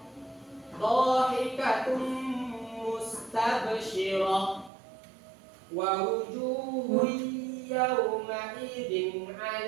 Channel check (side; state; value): left; drops out; at 4.7 s